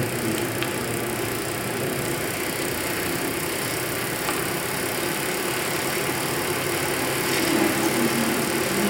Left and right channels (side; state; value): both; identical; correlation 1.00